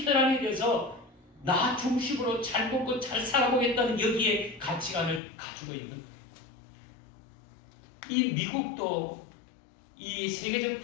혈안이 돼서 나 중심으로 잘 먹고 잘 살아보겠다는 여기에 가치관을 가지고 있는 거예요. 이 미국도 이 세계적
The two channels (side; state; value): right; drops out; at 5.2 s